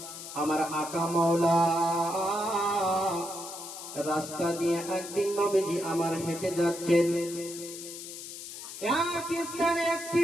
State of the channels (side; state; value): left; noise; hiss, 11 dB below the sound